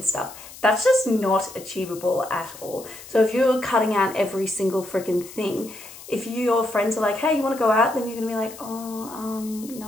stuff, that's just not achievable at all. So if you're cutting out every single freaking thing, if your friends are like, hey, you want to go out? Then you're going to be like, oh,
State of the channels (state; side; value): noise; left; hiss, 17 dB below the sound